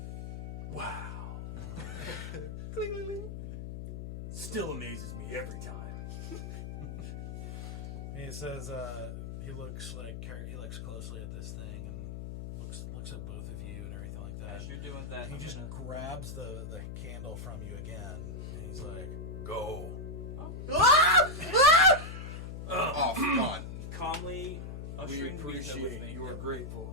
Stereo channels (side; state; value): left; noise; hum, 7 dB below the sound